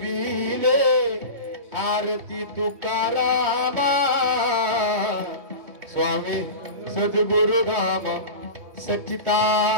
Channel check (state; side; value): late; left; 3.2 ms